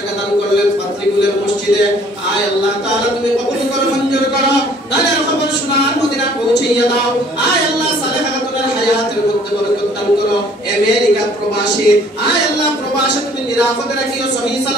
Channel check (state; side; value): normal; both; correlation 0.57